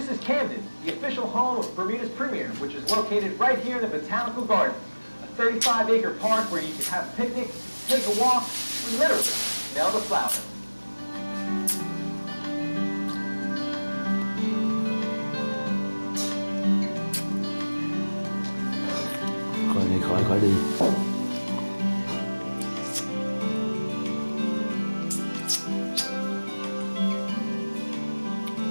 is Camden, the official home of Bermuda's premier, which is located right here in the Botanical Garden, a 35-acre park where you can have a picnic, take a walk, or literally smell the flowers. Khỏi đi.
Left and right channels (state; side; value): inverted; both; correlation -1.00